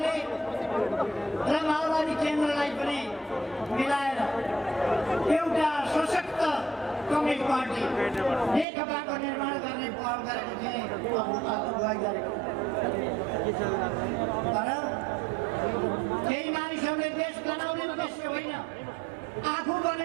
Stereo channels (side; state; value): left; drops out; at 8.7 s